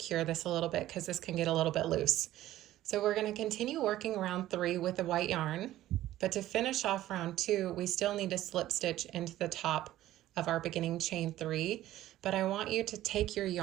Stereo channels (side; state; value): left; quieter; 14.3 dB